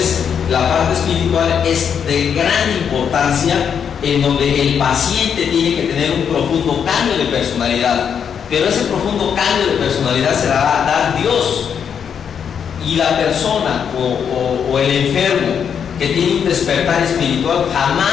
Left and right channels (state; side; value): quieter; right; 7.6 dB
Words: la parte espiritual es de gran importancia, en donde el paciente tiene que tener un profundo cambio de personalidad. Pero ese profundo cambio de personalidad se la va a dar Dios. Y la persona o el enfermo que tiene un despertar espiritual